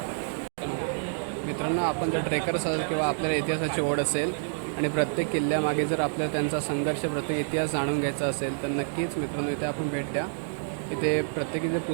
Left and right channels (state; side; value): silent; left; digital silence